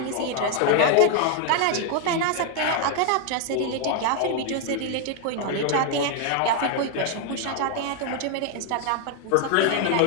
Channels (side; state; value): both; different; correlation 0.00